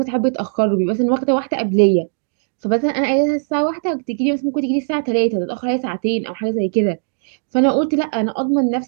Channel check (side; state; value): left; silent; digital silence